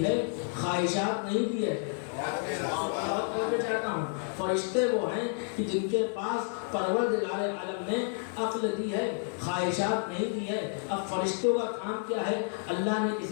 ہے، خواہشات نہیں دی ہے۔ چاہتا ہوں فرشتے وہ ہیں کہ جن کے پاس پروردگار عالم نے عقل دی ہے، خواہشات نہیں دی ہے۔ اب فرشتوں کا کام کیا ہے؟ اللہ نے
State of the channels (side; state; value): right; silent; 58 dB below the other